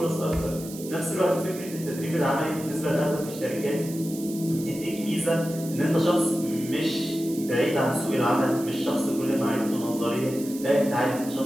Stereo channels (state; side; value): noise; right; hiss, 14 dB below the sound